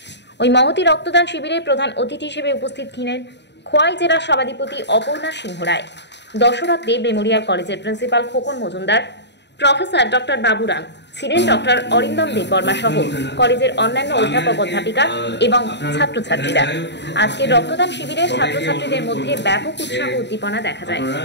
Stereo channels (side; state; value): right; late; 0.51 ms